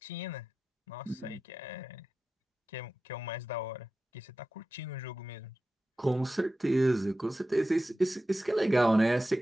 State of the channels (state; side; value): normal; both; correlation 0.93